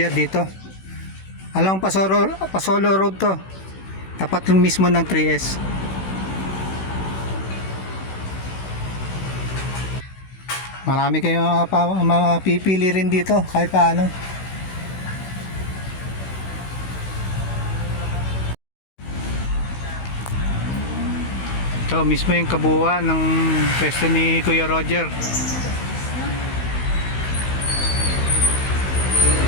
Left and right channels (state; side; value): late; right; 16 ms